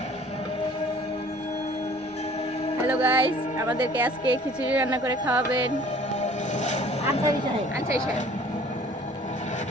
hello guys, আমাদেরকে আজকে খিচুড়ি রান্না করে খাওয়াবেন আনসারি সাহেব।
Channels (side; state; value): both; normal; correlation 0.52